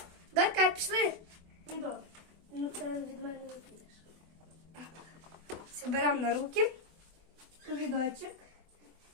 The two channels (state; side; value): late; left; 24 ms